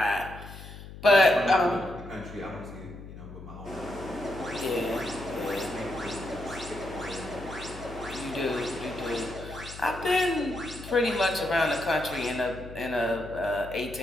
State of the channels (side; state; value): left; noise; hum, 14 dB below the sound